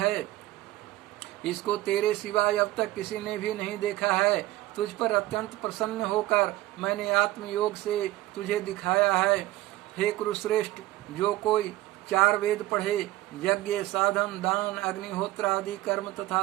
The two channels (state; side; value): quieter; left; 16.8 dB